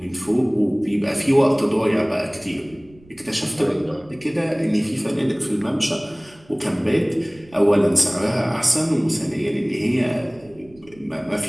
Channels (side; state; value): right; noise; rumble, 26 dB below the sound